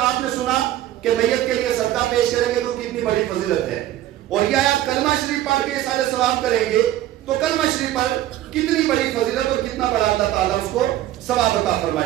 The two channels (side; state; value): left; quieter; 13.6 dB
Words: نے سنا کہ میت کے لیے صدقہ پیش کریں گے تو کتنی بڑی فضیلت ہے, اور یہ آیات کلمہ شریف پڑھ کے احسان ثواب کریں گے تو کلمہ شریف پر کتنی بڑی فضیلت اور کتنا بڑا اللہ تعالیٰ اس کو ثواب عطا